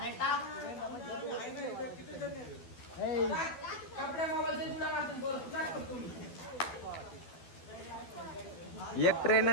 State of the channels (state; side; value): late; right; 12 ms